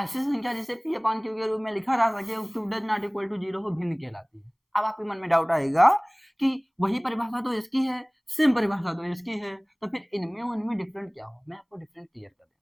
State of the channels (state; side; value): identical; both; correlation 1.00